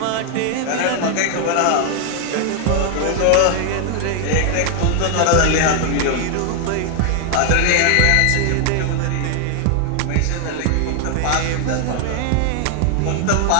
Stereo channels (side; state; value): both; different; correlation 0.00